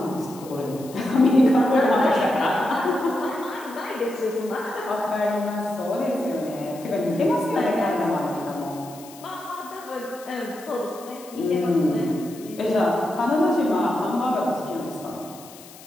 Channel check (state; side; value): noise; left; hiss, 19 dB below the sound